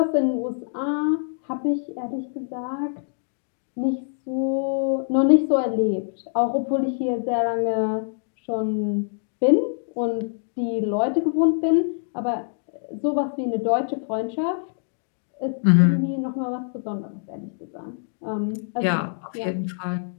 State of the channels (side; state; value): right; silent; digital silence